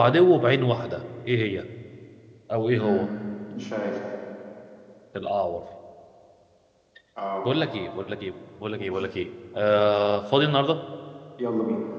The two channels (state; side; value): identical; both; correlation 1.00